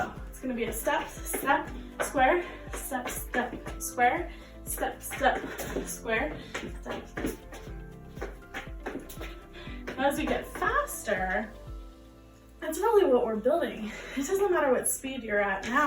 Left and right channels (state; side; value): identical; both; correlation 1.00